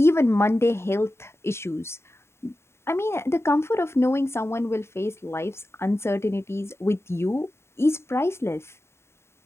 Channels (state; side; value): late; right; 0.12 ms